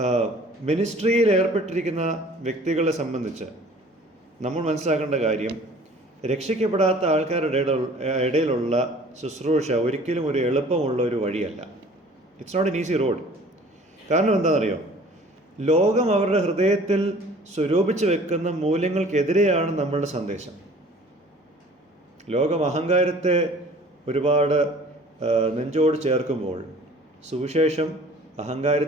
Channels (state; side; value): normal; both; correlation 0.49